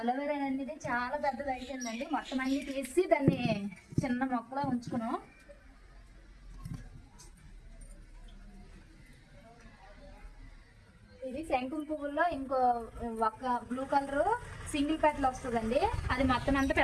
అనేది చాలా పెద్దది అయిపోయిందండి. మొత్తం అన్ని తీసి దాన్ని చిన్న మొక్కలా ఉంచుకున్నాం. ఇది శంకుం పువ్వుల్లో ఇంకో ఒక బ్లూ కలర్ సింగిల్ పెటల్ వస్తుందండి. అది మొత్తం అంతా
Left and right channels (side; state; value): both; identical; correlation 1.00